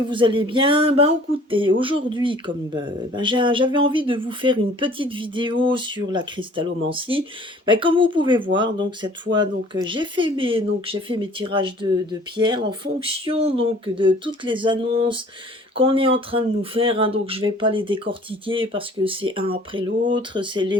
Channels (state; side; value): normal; both; correlation 0.52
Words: vous allez bien. Ben écoutez, aujourd'hui, comme j'avais envie de vous faire une petite vidéo sur la cristallomancie. Comme vous pouvez voir, donc cette fois, j'ai fait mes tirages de pierres en fonction donc de toutes les annonces qu'on est en train de nous faire, hein. Donc je vais pas les décortiquer parce que c'est un après l'autre, c'est les